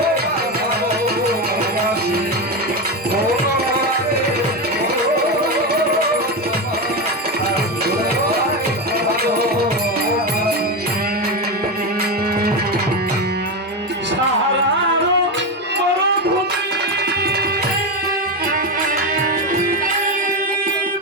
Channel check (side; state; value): both; normal; correlation 0.14